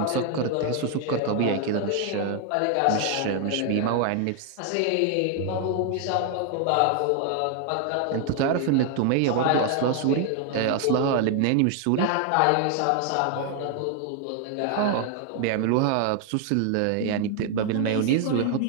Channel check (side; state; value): both; different; correlation 0.00